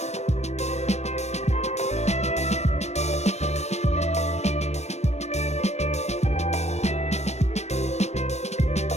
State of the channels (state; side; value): late; right; 0.32 ms